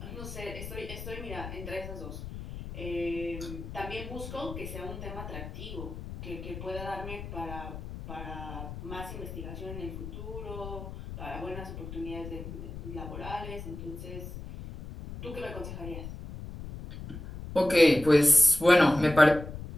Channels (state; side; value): noise; left; rumble, 10 dB below the sound